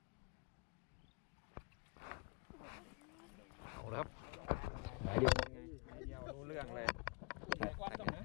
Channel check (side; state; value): right; quieter; 32.4 dB